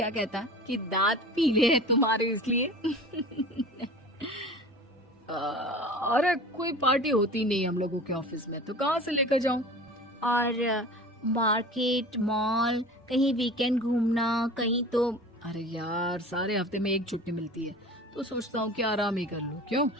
कहता कि दांत पीले हैं तुम्हारे इसलिए। अरे कोई पार्टी होती नहीं हम लोगों के ऑफिस में, तो कहाँ से लेकर जाऊं? और मार्केट, मॉल, कहीं वीकेंड घूमना, कहीं तो। अरे यार सारे हफ्ते में एक छुट्टी मिलती है, तो सोचता हूँ कि आराम ही कर लूं। क्यों?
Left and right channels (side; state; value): both; normal; correlation 0.38